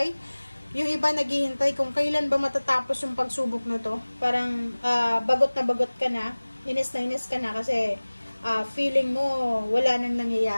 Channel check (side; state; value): both; inverted; correlation -1.00